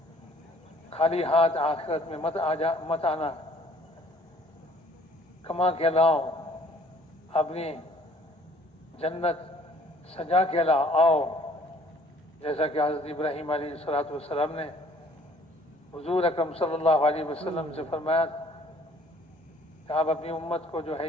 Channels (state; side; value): normal; both; correlation 0.57